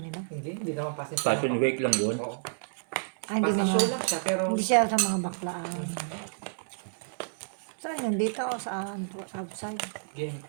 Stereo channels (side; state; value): left; silent; digital silence